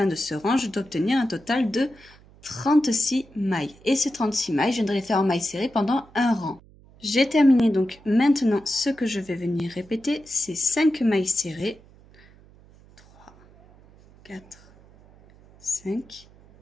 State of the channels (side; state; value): right; noise; hum, 26 dB below the sound